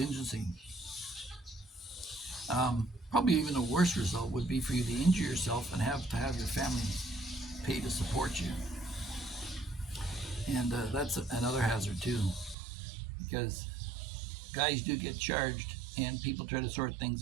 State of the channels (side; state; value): left; drops out; at 12.6 s